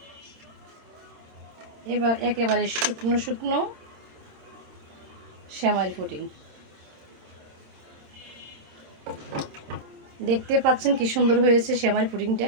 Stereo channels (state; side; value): late; left; 27 ms